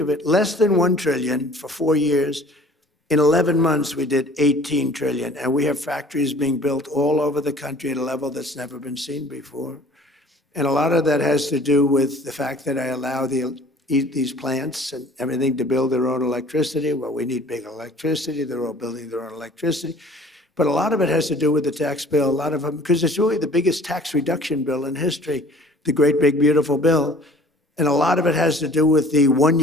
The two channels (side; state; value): both; normal; correlation 0.50